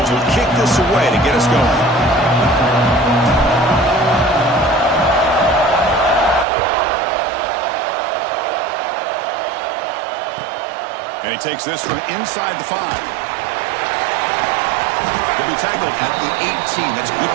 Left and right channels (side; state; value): left; drops out; at 6.5 s